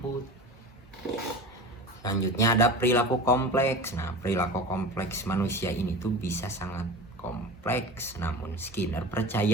Selanjutnya ada perilaku kompleks. Nah, perilaku kompleks manusia ini tuh bisa sangat kompleks, namun Skinner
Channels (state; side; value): normal; both; correlation 0.32